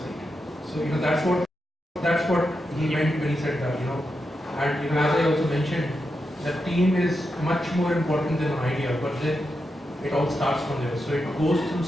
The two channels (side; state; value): both; normal; correlation 0.87